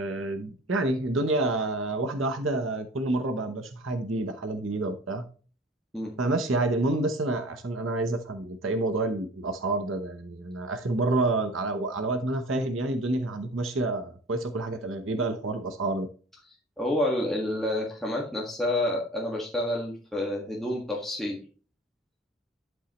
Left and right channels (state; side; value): normal; both; correlation 0.42